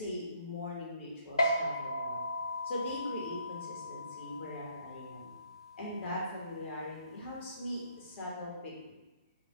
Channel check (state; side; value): inverted; both; correlation -0.67